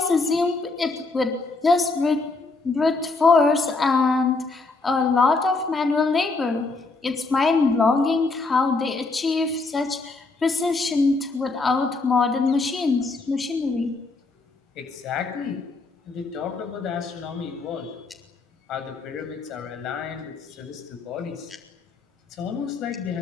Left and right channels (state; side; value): quieter; right; 3.7 dB